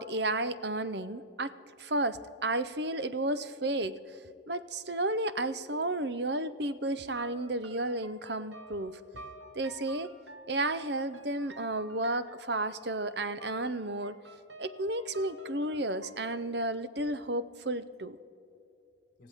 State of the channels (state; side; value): normal; both; correlation -0.11